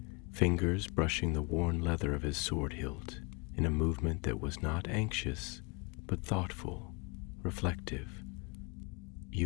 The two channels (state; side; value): quieter; right; 30.4 dB